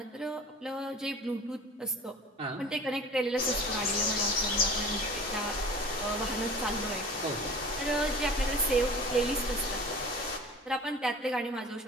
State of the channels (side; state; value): both; normal; correlation 0.41